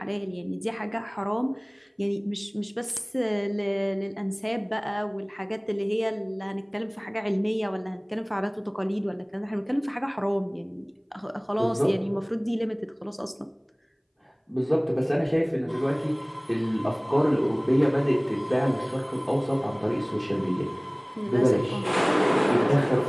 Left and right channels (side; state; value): both; identical; correlation 1.00